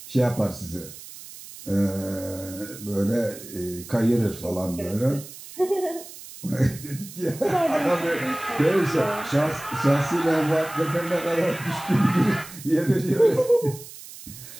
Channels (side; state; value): right; noise; hiss, 15 dB below the sound